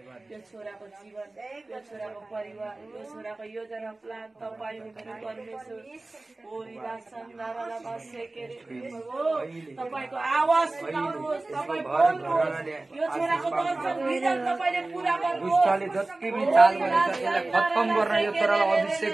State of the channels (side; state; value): left; quieter; 3.0 dB